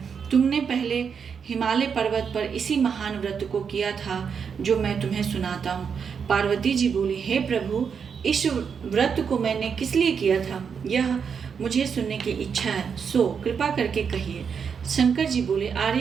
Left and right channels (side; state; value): left; quieter; 6.6 dB